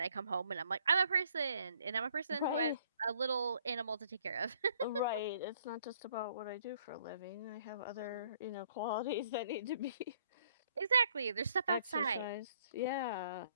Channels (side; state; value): both; inverted; correlation -0.64